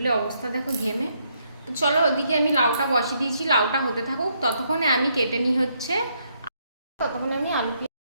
অবস্থা দেখো ঘেমে। তো চলো ওদিকে আমি লাউটা বসিয়ে দিয়েছি, লাউটা হতে থাকুক। ততক্ষণে আমি কেটে নিই হচ্ছে, ততক্ষণে আমি আলু।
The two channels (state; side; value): inverted; both; correlation -0.74